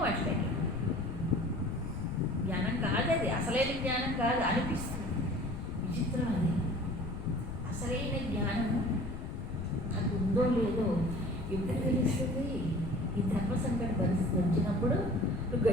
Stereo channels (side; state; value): left; noise; rumble, 7 dB below the sound